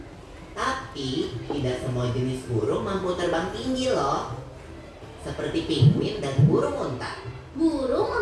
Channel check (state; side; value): identical; both; correlation 1.00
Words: Tapi tidak semua jenis burung mampu terbang tinggi loh. Seperti penguin dan burung unta. Burung